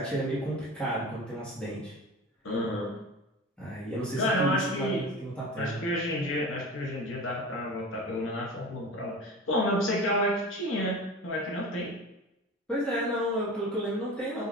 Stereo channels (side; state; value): both; normal; correlation 0.33